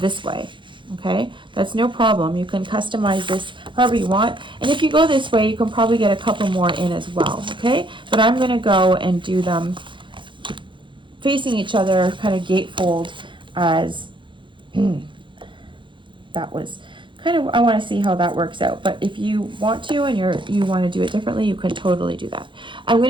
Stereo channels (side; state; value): left; late; 0.23 ms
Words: way. Okay, that's no problem. You can customize this however you want, and if you go this way, you can probably get a couple more in as well. Okay, but I'm going to go and do them facing each other, kind of gatefold, as that was kind of, I want to see how that works out. But if you want to and you want to do it differently, you can totally do that. I'm